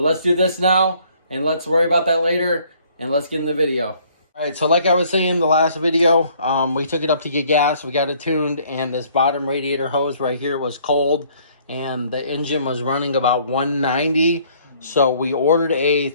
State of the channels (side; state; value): both; inverted; correlation -0.60